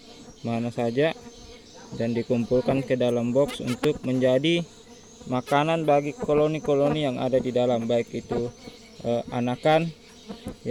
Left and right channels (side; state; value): both; identical; correlation 1.00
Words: mana saja, dan dikumpulkan ke dalam box untuk menjadi makanan bagi koloni-koloni yang ada di dalam, baik itu anakan